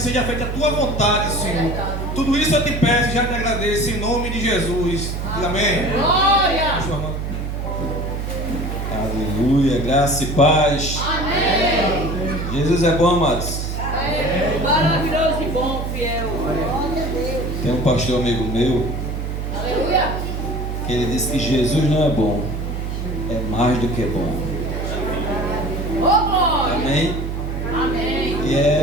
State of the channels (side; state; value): right; noise; hum, 4 dB below the sound